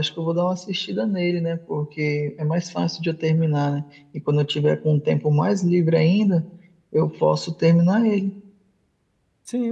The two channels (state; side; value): identical; both; correlation 1.00